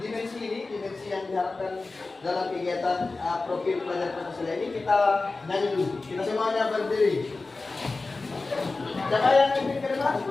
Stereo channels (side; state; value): right; quieter; 3.6 dB